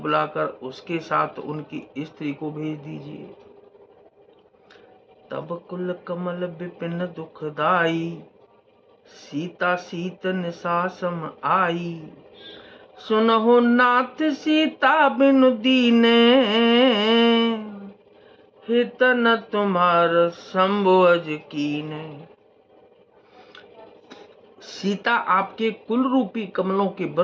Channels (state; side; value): identical; both; correlation 1.00